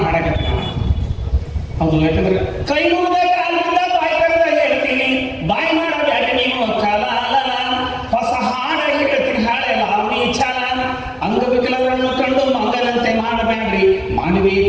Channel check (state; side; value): identical; both; correlation 1.00